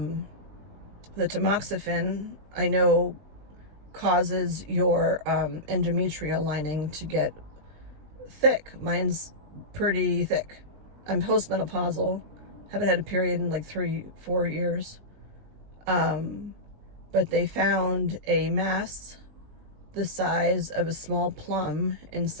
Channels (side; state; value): left; late; 20 ms